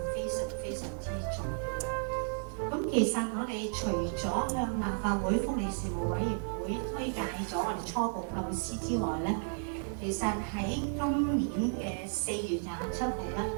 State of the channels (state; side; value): silent; left; 56 dB below the other